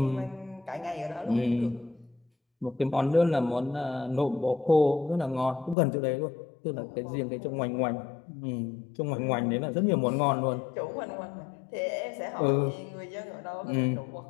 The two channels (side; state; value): right; drops out; at 5.8 s